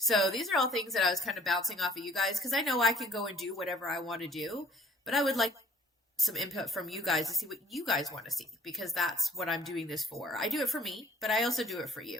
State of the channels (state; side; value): normal; both; correlation 0.56